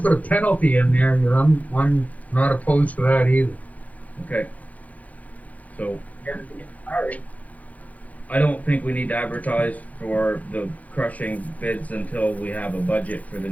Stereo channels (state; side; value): late; right; 0.074 ms